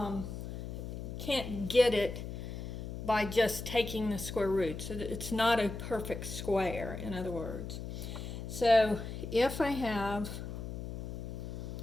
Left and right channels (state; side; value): noise; left; hum, 7 dB below the sound